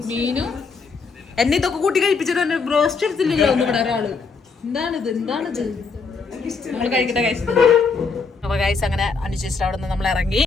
മീനും എന്നെ ഇതൊക്കെ കൂട്ടി കഴിപ്പിച്ചിട്ട് ബ്രോസ്റ്റ് എടുത്തില്ലല്ലോ ഒന്നും ഇവിടെ ഒരാള്. എന്താണിത് നമ്മൾ കഴിക്കട്ടെ ഗൈസ്. അപ്പൊ ഗൈസ് അങ്ങനെ അനുശേഷിച്ചിട്ട് അവിടെ നിന്ന് നമ്മൾ ഇറങ്ങി.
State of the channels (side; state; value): right; quieter; 4.7 dB